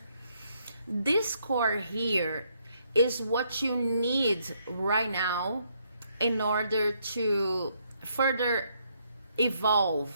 This core here is what you need right now in order to further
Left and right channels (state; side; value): inverted; both; correlation -0.73